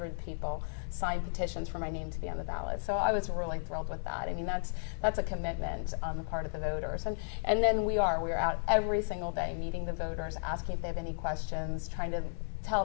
people sign petitions for my name to be on the ballot. So I was really thrilled with that. I mean, that's a commitment on the part of the voters. And then we're out every single day meeting the voters, asking if they have any questions, trying to tell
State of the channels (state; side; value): silent; right; digital silence